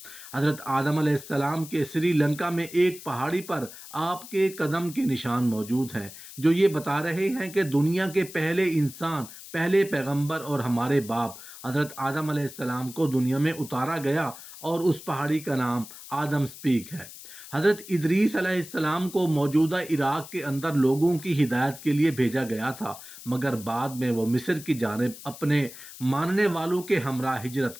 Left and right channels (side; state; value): left; noise; hiss, 15 dB below the sound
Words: حضرت آدم علیہ السلام کے سری لنکا میں ایک پہاڑی پر آپ کے قدم کے نشان موجود ہیں جو یہ بتا رہے ہیں کہ دنیا کے پہلے انسان، پہلے پیغمبر اور ہمارے باپ حضرت آدم علیہ السلام کو دنیا میں اتارا گیا اور اس پہاڑی کا نام آدم سپیک ہے۔ حضرت ادریس علیہ السلام کو موجودہ عراق کے اندر لوگوں کی ہدایت کے لیے بھیجا گیا تھا، مگر بعد میں وہ مصر کی جانب اپنے ماننے والوں کے ہمراہ ہجرت